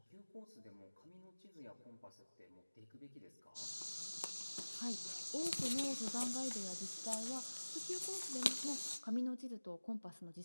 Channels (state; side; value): inverted; both; correlation -1.00